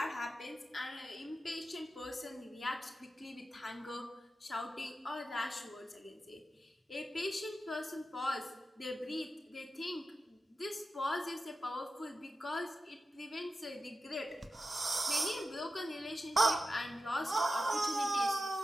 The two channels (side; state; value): both; normal; correlation 0.92